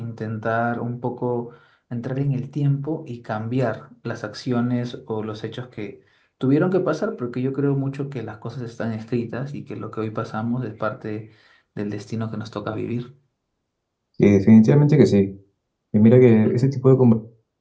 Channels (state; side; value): identical; both; correlation 1.00